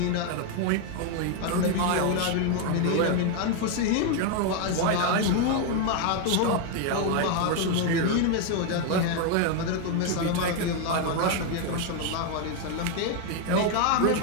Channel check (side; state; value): both; different; correlation 0.01